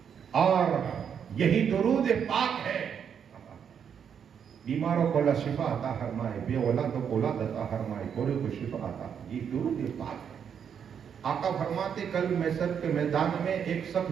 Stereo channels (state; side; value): quieter; left; 7.8 dB